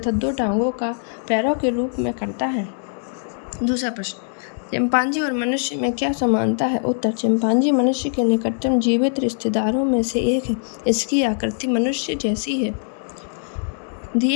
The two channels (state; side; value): silent; right; digital silence